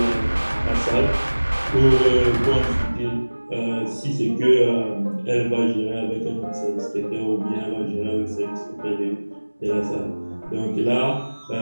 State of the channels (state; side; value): inverted; both; correlation -1.00